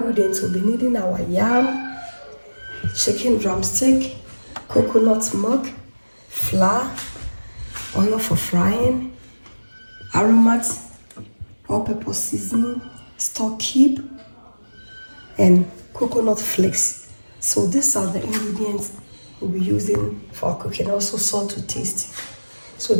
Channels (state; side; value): inverted; both; correlation -1.00